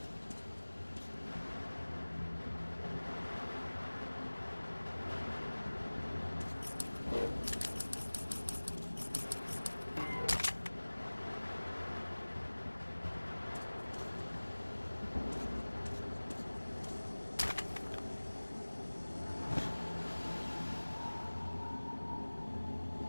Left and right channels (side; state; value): both; inverted; correlation -1.00